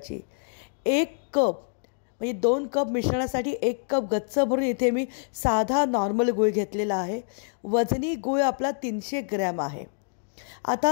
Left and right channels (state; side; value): silent; right; digital silence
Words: 1 कप म्हणजे 2 कप मिश्रणासाठी 1 कप गच्च भरून इथे मी साधा नॉर्मल गूळ घेतलेला आहे। वजनी गूळ आपला 300 ग्रॅम आहे।